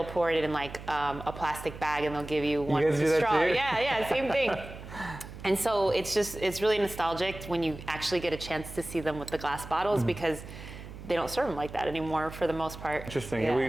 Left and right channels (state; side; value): noise; right; hum, 13 dB below the sound